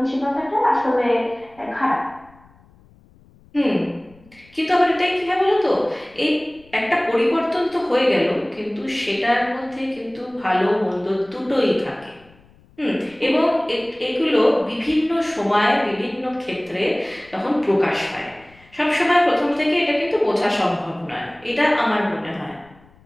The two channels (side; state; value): left; noise; rumble, 28 dB below the sound